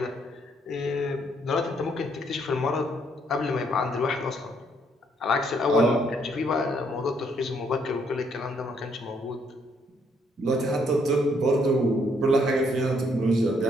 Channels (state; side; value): normal; both; correlation 0.70